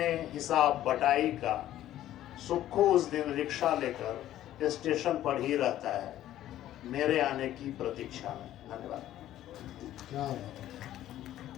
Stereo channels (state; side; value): quieter; right; 13.0 dB